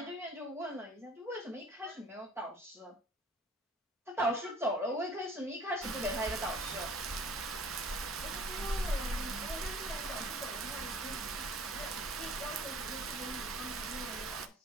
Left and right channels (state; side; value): normal; both; correlation 0.50